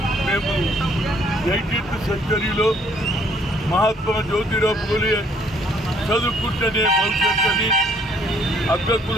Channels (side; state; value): both; normal; correlation 0.64